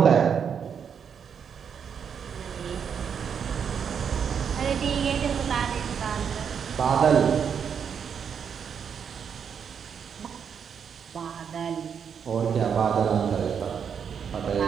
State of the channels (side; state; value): left; quieter; 7.3 dB